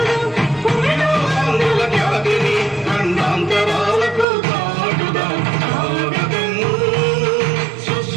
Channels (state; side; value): drops out; left; at 4.2 s